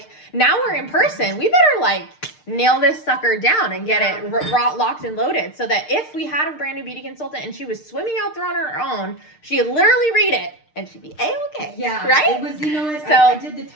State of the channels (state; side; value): late; right; 6.6 ms